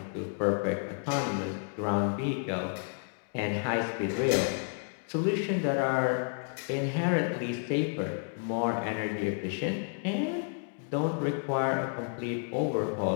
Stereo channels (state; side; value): silent; right; 55 dB below the other